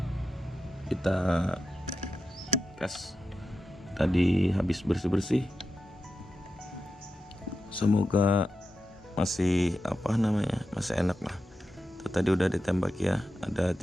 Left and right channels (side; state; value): both; normal; correlation 0.90